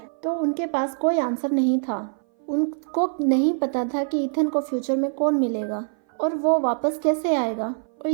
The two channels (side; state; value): left; silent; 58 dB below the other